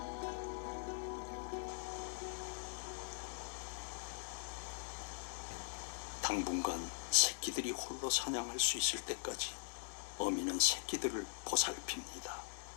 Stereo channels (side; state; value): right; silent; digital silence